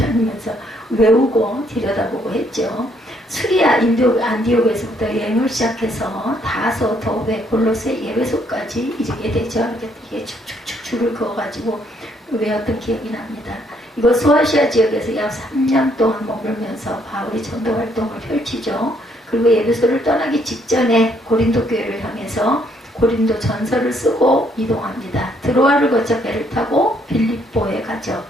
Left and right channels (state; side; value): normal; both; correlation 0.69